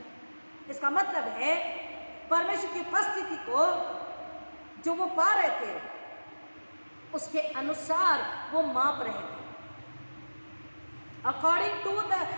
इसका मतलब है परमेश्वर की उपस्थिति को जो वो पा रहे थे, उसके अनुसार वो माप रहे थे। According to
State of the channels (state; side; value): inverted; both; correlation -1.00